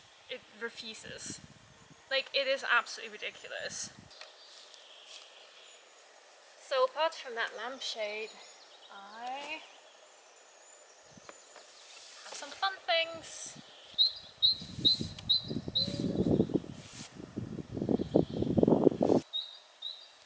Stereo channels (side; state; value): both; identical; correlation 1.00